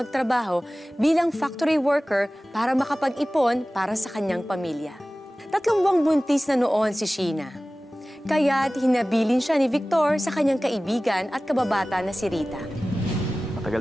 bilang factory worker para makapag-ipon para sa kanyang pamilya. 3 buwang buntis na noon si Sheena. Kaya't hinabilin siya ni Victor sa kanyang kaibigan at kababata na si Rita.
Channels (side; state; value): both; normal; correlation 0.97